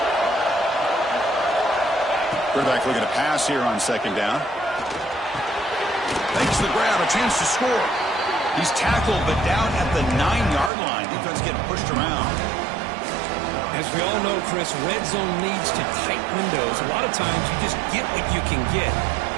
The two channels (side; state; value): left; drops out; at 10.7 s